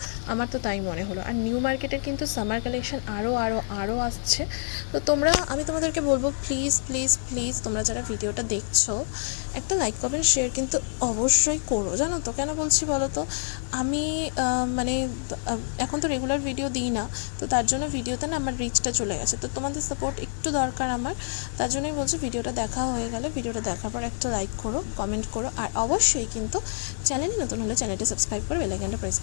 আমার তো তাই মনে হলো। আর নিউ মার্কেটের কিন্তু সামার কালেকশন আরও আসছে। তো তোমরা, আমি তোমাদেরকে বলবো প্লিজ প্লিজ প্লিজ তোমরা যারা ভিডিওটা দেখছো একটা লাইক কমেন্ট শেয়ার কিন্তু অবশ্যই করো, জানো তো কেন বলছি বলো তো। আমি মানে এখন তো রেগুলার ভিডিও দিই না, তো তার জন্য ভিডিওতে না আমার রিচটা চলে গেছে, তো তোমাদের সাপোর্ট একটু দরকার আমার। তার জন্যই বলছি ভিডিওটা দেখা হয়ে গেলে ভিডিওটা দেখার পর একটা লাইক করো, কমেন্ট করো, আর অবশ্যই কিন্তু চ্যানেল নতুন হলে চ্যানেলটি সাবস্ক্রাইব করে বেল আইকনটা প্রেস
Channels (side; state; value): right; silent; digital silence